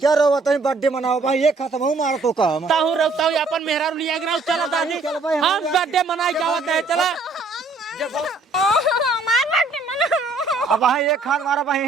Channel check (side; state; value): left; quieter; 3.5 dB